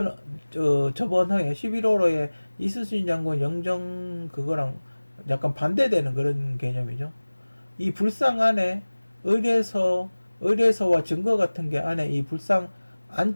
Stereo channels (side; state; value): both; inverted; correlation -1.00